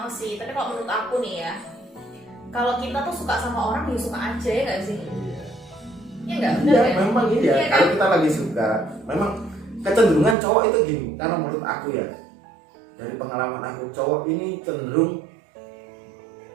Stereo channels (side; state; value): left; drops out; at 10.4 s